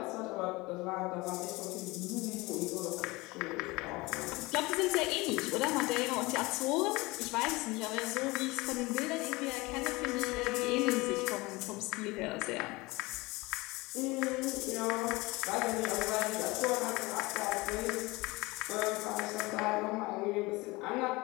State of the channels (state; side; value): quieter; right; 22.6 dB